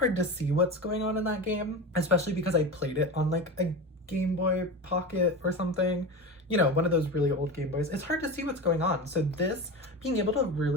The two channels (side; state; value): both; normal; correlation 0.26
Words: to see what's going on in that game, especially because I played it on like a Game Boy Pocket or something. One of those really old Game Boys. It's hard to see what's going on. So this, being able to